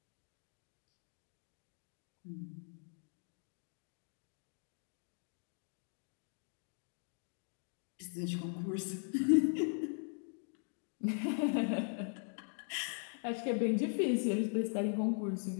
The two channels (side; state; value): right; silent; 51 dB below the other